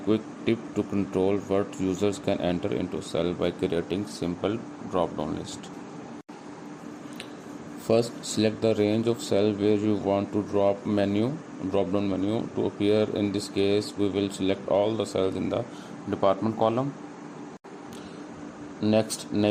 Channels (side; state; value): both; identical; correlation 1.00